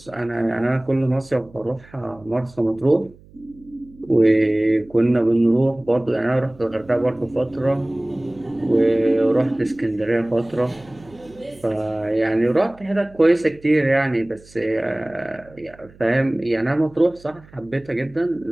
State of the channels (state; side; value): noise; right; hum, 25 dB below the sound